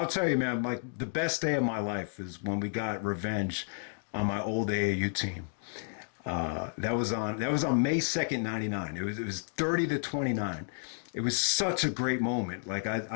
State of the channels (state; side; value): silent; right; digital silence